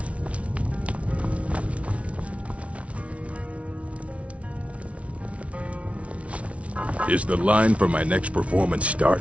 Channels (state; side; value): late; left; 0.063 ms